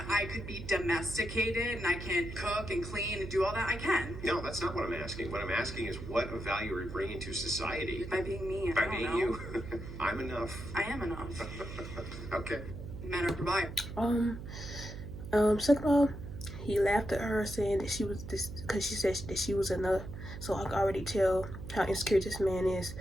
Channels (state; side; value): noise; right; hum, 10 dB below the sound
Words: I could be domesticated and I can cook and clean and do all that, I can. No, that's not what I'm asking. What I'm asking is what of value are you bringing to society? By being me, By being you. I'm enough. I am enough. Okay. Men are providers. Second of all, he laughed at her saying that she was this because she said that she was enough. So I can already tell how insecure this man is,